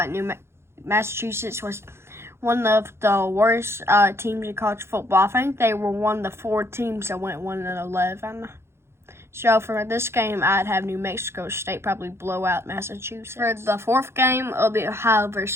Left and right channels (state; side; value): late; left; 0.12 ms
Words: Massachusetts was one of the worst teams in college football. I think they were one of the 4 teams that went 1-11. So for this game, I'd have New Mexico State probably blow out Massachusetts. For the 4th game, it'll be Ohio